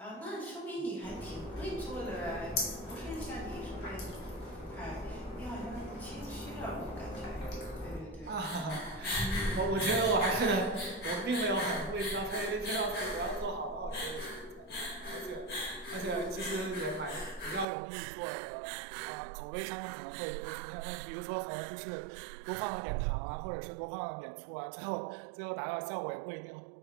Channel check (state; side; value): drops out; left; at 17.7 s